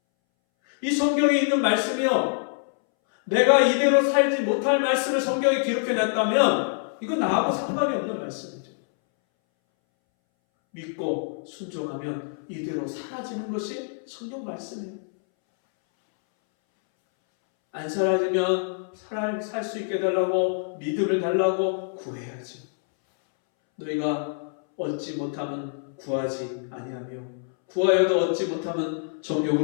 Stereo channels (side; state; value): right; silent; 61 dB below the other